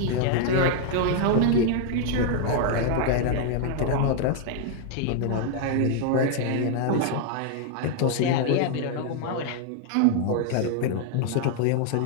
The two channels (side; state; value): both; different; correlation 0.00